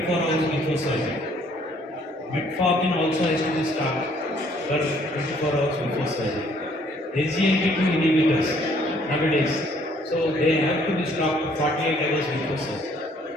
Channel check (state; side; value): normal; both; correlation 0.63